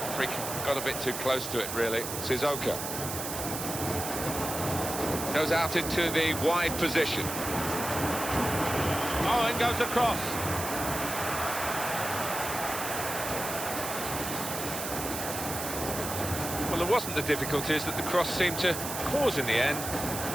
Freak got a bit too close to it, really. Sissoko goes out into the wide position. Oh, it goes across. Well, there wasn't the difficulties that the cross seemed to cause in the end,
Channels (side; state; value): right; noise; hiss, 5 dB below the sound